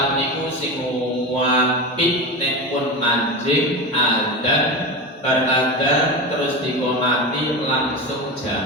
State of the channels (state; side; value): normal; both; correlation 0.22